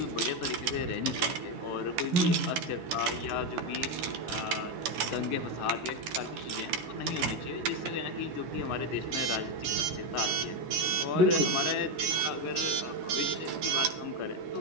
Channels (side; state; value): left; late; 11 ms